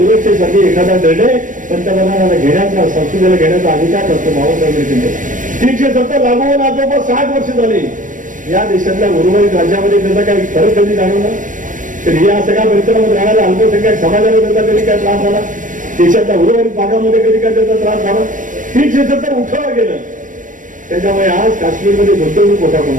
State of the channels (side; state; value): left; late; 0.38 ms